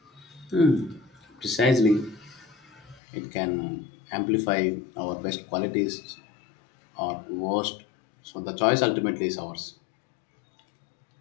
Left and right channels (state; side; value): drops out; right; at 3.0 s